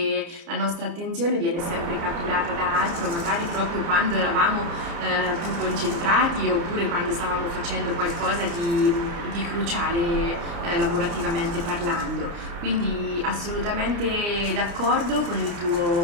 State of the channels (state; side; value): late; left; 29 ms